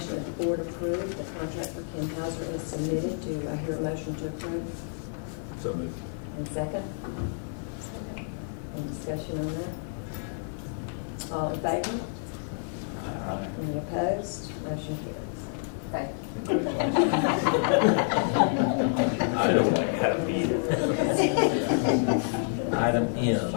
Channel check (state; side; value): silent; right; 59 dB below the other